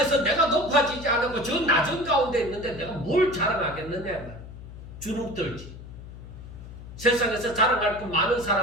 내가 높아지지 않고 저 낮은 가운데 있는데 내가 뭘 자랑하겠느냐 이 말이에요. 주눅 들지. 세상에서 자랑할 거 많은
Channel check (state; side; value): noise; left; hum, 14 dB below the sound